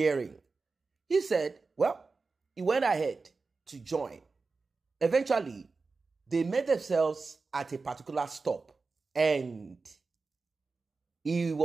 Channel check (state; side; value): quieter; left; 4.1 dB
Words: He said, well, he went ahead to join. Eventually, they met themselves at a particular stop and he